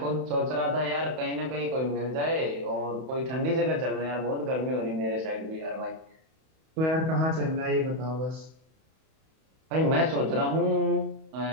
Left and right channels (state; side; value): late; left; 31 ms